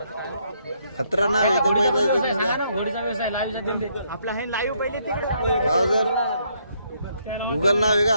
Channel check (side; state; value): both; inverted; correlation -0.72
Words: खतरा नाव आहे तो बैलाचं तुमच्या. आपला हे लाईव्ह पहिले तिकडे गाव जर गुगल नाव आहे